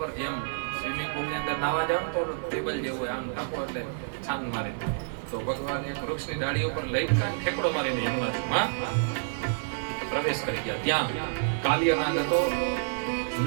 જેમ સ્વિમિંગ પુલની અંદર નાવા જાવ તો ટેબલ જેવું આમ ટપો એટલે છાન મારે, તો ભગવાન એક વૃક્ષની ડાળી ઉપર લઈને ઠેકડો મારીને યમુનાજીમાં પ્રવેશ કરી ગયા. ત્યાં કાલ્યનાગ હતો.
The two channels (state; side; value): silent; left; 59 dB below the other